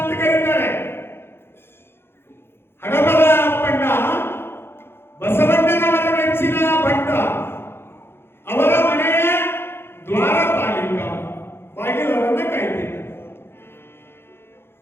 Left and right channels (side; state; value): right; late; 0.11 ms